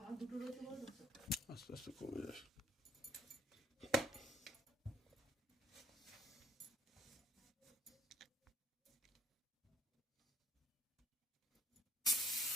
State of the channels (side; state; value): both; normal; correlation 0.59